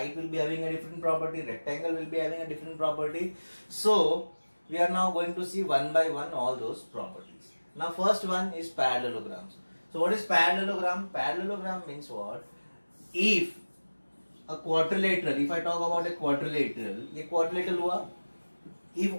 will be having a different property, rectangle will be having a different property. So we are now going to see one by one all those properties. Now first one is parallelograms. So what is parallelogram? Parallelogram means what? If a quadrilateral, if I talk about a quadrilateral, ये quadrilateral हुआ. If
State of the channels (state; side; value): inverted; both; correlation -1.00